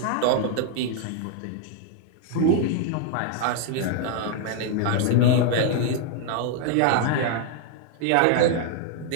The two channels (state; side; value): different; both; correlation 0.00